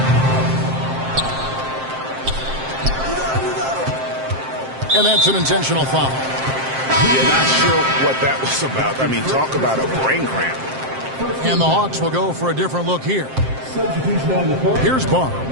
And that's an intentional foul. You're not sure what that was about. I mean, talk about a brain cramp. And the Hawks will go for a different look here. Here's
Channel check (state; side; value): late; left; 7.6 ms